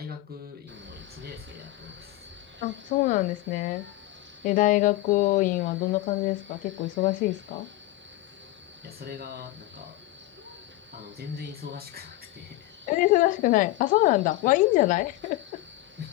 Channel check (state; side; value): quieter; right; 16.8 dB